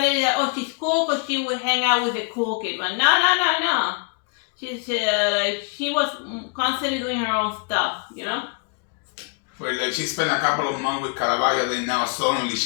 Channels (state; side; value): quieter; right; 34.5 dB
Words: it is that, oh, she's cool because she would hang out with the cool kid. But no. She's like she was constantly doing her own stuff, you know. But like she spent a couple of months with Caravaggio, then now suddenly